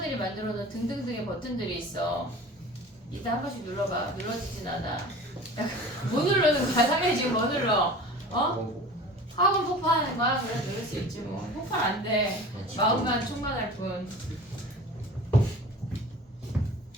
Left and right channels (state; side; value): normal; both; correlation 0.39